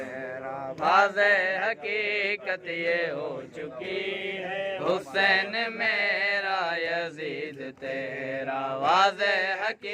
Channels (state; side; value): identical; both; correlation 1.00